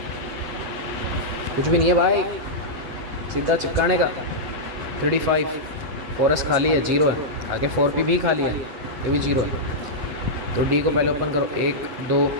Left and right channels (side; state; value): left; late; 8.1 ms